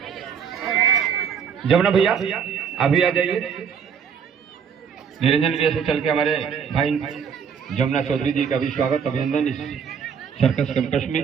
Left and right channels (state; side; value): quieter; left; 7.0 dB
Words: जमुना भैया अभी आ जाइए। निरंजन भैया से चल के हमारे भाई जमुना चौधरी जी का भी स्वागत अभिनंदन इस सर्कस कैंपस में।